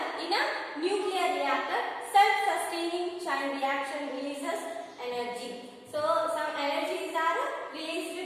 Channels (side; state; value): both; identical; correlation 1.00